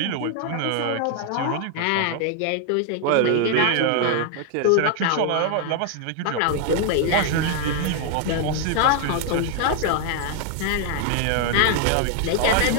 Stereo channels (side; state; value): both; different; correlation 0.00